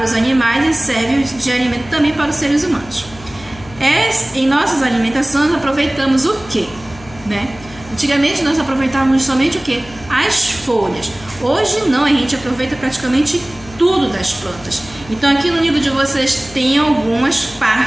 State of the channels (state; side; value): noise; left; hum, 20 dB below the sound